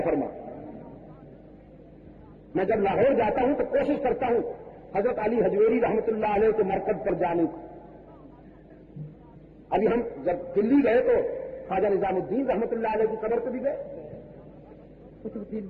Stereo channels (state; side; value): identical; both; correlation 1.00